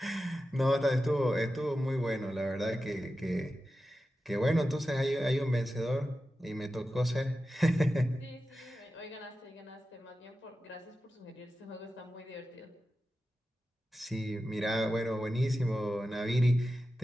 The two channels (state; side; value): normal; both; correlation 0.92